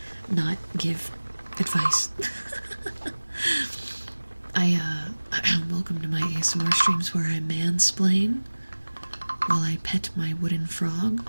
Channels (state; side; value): inverted; both; correlation -1.00